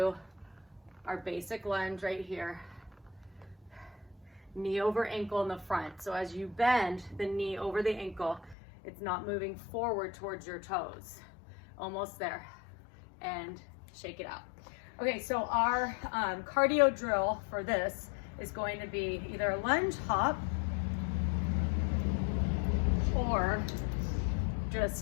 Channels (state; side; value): drops out; right; at 8.6 s